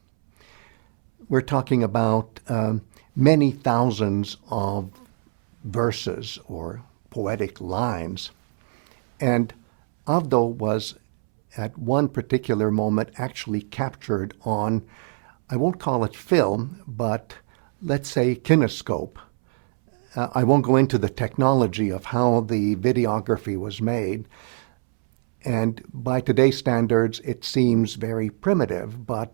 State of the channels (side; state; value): left; silent; 63 dB below the other